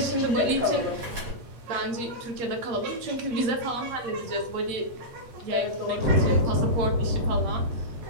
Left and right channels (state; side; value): late; left; 8.6 ms